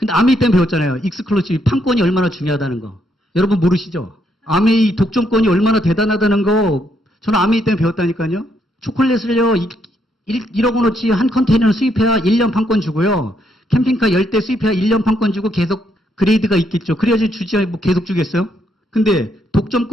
아메이 때문에 배웠잖아요. 익스클루시브 판권이 얼마나 중요하다는 거. 여러분 모르시죠? 아메이 독점권이 얼마나 대단하다는 거 저는 아메이 때문에 배웠다니까요. 초콜릿을요 1억 원어치 한 컨테이너를 수입해야 1년 판권 주고요. 캠핑카 10대 수입해야 1년 판권 주고 계속 그레이드가 있겠죠. 그래야지 주지 뭐 계속 주겠어요? 근데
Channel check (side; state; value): both; normal; correlation 0.75